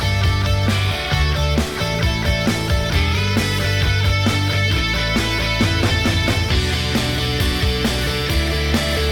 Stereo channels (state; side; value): identical; both; correlation 1.00